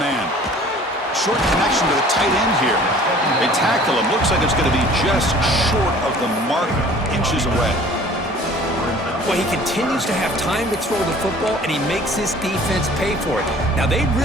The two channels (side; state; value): both; normal; correlation 0.50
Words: Short connection to the tight end here. They tackle him. Looks like it's going to be just short of the marker, inches away. Well, he continues to have time to throw the football, and he makes his defense pay for it. Now, they